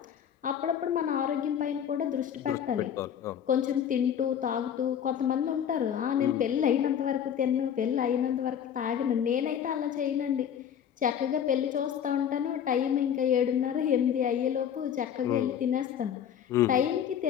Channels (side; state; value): right; quieter; 8.9 dB